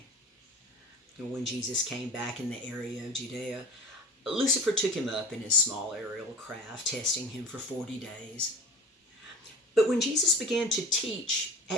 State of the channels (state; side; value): normal; both; correlation 0.38